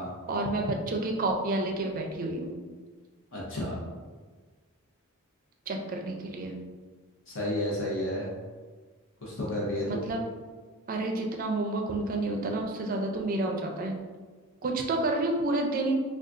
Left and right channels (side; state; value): both; normal; correlation 0.30